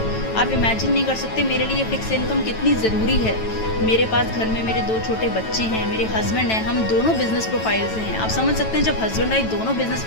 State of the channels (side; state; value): right; late; 9.1 ms